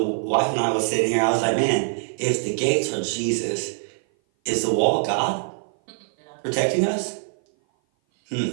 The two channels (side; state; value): left; silent; 57 dB below the other